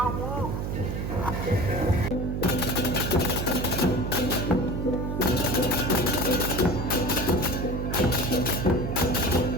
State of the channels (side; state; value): right; noise; hum, 3 dB below the sound